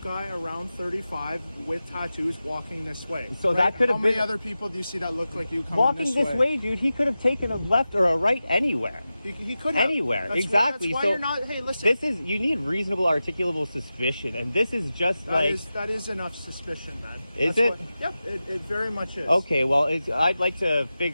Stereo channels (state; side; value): inverted; both; correlation -0.94